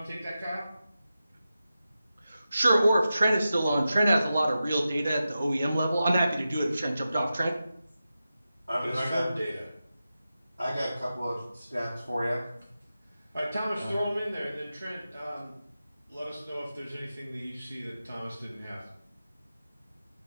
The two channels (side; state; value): both; inverted; correlation -0.92